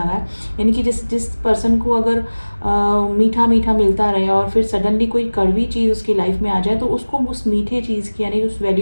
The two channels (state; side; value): inverted; both; correlation -1.00